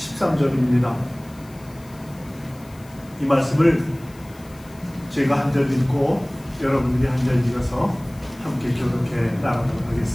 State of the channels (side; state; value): left; noise; hiss, 25 dB below the sound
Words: 이 말씀을 제가 한 절 읽고 여러분들이 한 절 읽어서 함께 교독해 나가도록